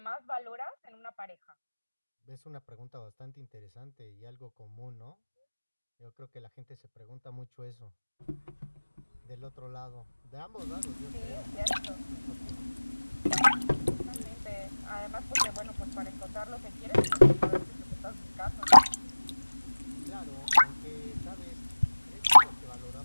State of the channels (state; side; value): inverted; both; correlation -1.00